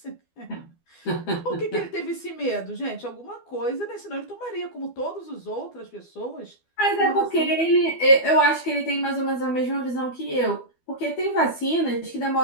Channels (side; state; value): right; late; 12 ms